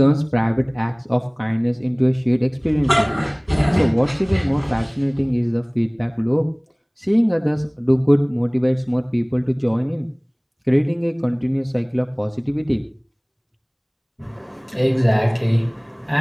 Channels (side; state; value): both; identical; correlation 1.00